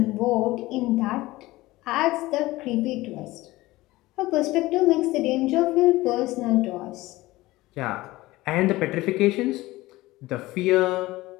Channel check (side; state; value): right; quieter; 18.8 dB